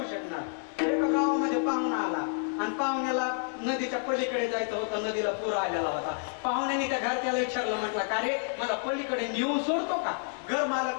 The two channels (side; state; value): right; silent; 58 dB below the other